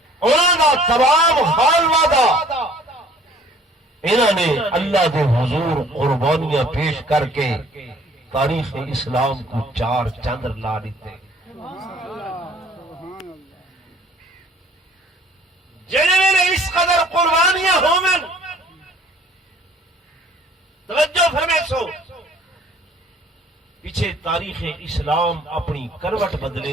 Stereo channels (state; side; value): normal; both; correlation 0.55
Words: انہوں نے تمام خانواں دا انہوں نے اللہ دے حضور قربانیاں پیش کر کے تاریخ اسلام کو 4 چاند لا دیتے جنہوں نے اس قدر قربانیاں ہومن توجہ فرمائے سو پیچھے تاریخ اسلام اپنی کروٹ